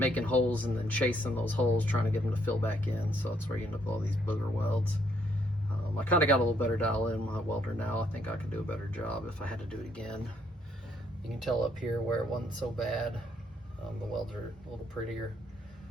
holes and then chasing those holes, trying to get them to fill back in, so that's where you end up with all these booger welds. I kind of got a little better dial in my welder now. I think I could do a better job if I had to do it again. You can tell up here where it wasn't so bad. The welds are a little prettier,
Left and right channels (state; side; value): normal; both; correlation 0.70